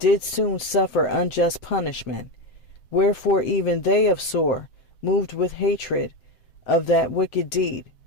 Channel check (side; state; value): right; late; 7.7 ms